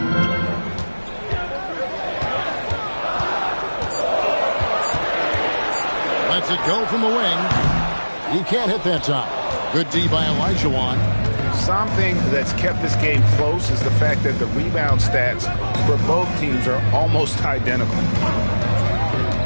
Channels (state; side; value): inverted; both; correlation -1.00